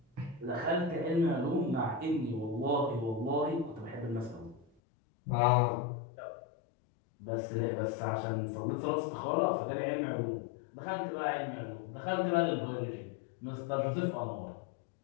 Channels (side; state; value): right; drops out; at 4.7 s